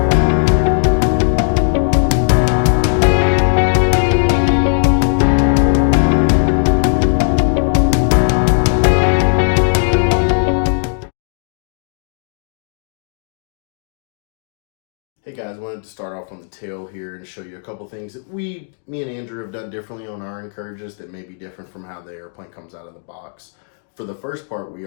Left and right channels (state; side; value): silent; right; digital silence